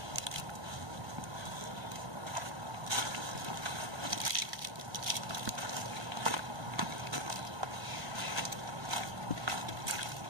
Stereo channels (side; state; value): left; late; 1.3 ms